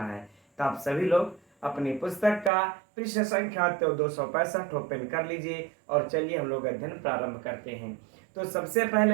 है। तो आप सभी लोग अपनी पुस्तक का पृष्ठ संख्या 265 ओपन कर लीजिए और चलिए हम लोग अध्ययन प्रारंभ करते हैं। तो सबसे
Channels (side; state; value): left; drops out; at 2.5 s